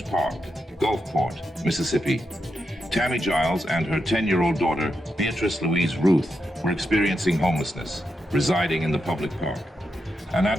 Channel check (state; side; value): normal; both; correlation 0.85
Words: Park, Gulfport, Mississippi. Tammy Giles and her 10-year-old daughter, Beatrice Louise Ruth, were experiencing homelessness, residing in the public park. An